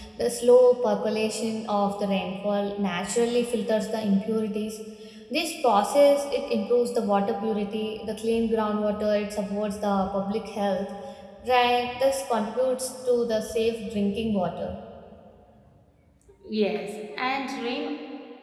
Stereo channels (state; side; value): identical; both; correlation 1.00